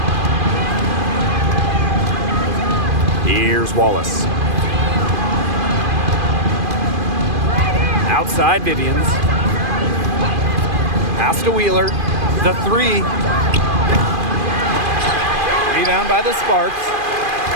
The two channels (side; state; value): left; late; 2.5 ms